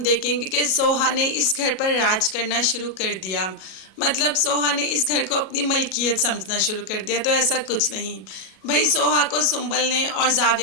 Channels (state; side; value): late; right; 37 ms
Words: देखेंगे कि सोहा ने इस घर पर राज करना शुरू कर दिया। मतलब सोहा ने इस घर को अपनी मलकियत समझना शुरू कर दिया। तो ऐसा कुछ नहीं भाई, सोहा को सुंबल ने और